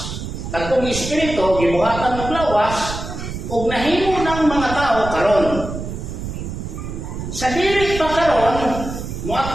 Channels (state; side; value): noise; right; rumble, 7 dB below the sound